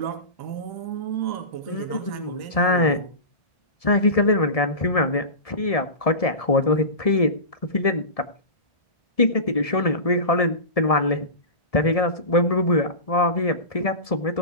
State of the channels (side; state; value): right; late; 1.7 ms